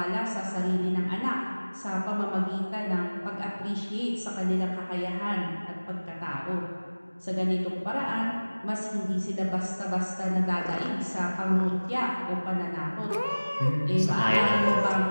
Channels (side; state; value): both; inverted; correlation -1.00